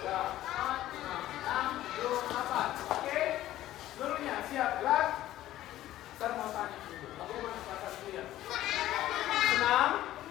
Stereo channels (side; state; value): right; quieter; 14.1 dB